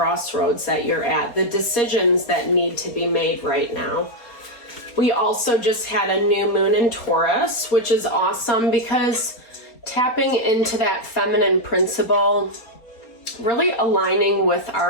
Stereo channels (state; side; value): late; right; 4.3 ms